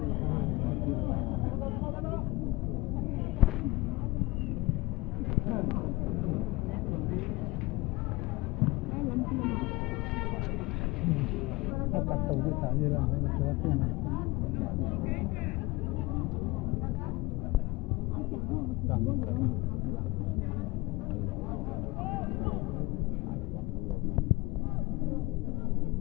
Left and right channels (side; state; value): right; quieter; 21.3 dB